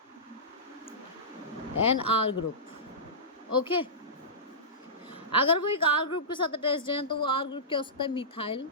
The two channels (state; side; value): normal; both; correlation -0.18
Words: an R group. Okay, अगर वो एक R ग्रुप के साथ अटैच्ड है तो वो R ग्रुप क्या हो सकता है, मिथाइल